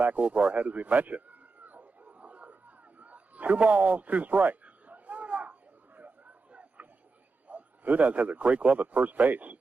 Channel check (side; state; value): left; quieter; 4.0 dB